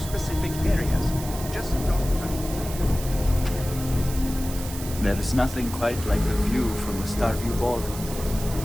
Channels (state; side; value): noise; right; hiss, 11 dB below the sound